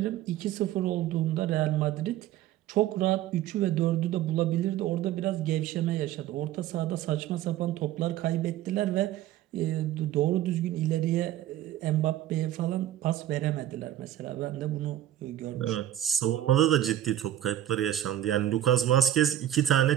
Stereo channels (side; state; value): left; quieter; 12.4 dB